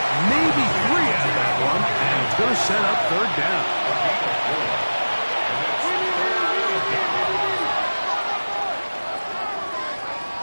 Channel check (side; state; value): both; inverted; correlation -1.00